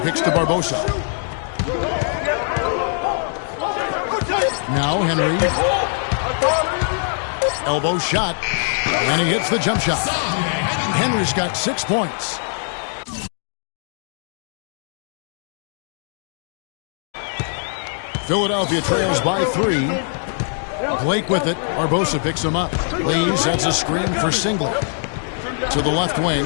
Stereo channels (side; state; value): right; silent; digital silence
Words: picks to Barbosa. Now Henry. Elbow shot. And he hits the jump shot. Henry's got 6 points. Philadelphia trails by 3. Blake with it. Barbosa picks him up. Lee sets a screen for Singler. To the left